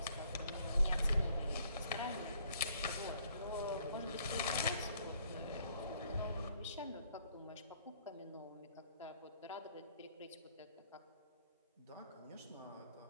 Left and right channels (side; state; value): both; inverted; correlation -0.64